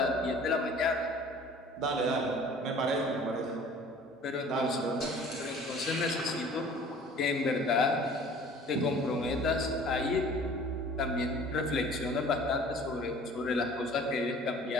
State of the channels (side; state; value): both; normal; correlation 0.48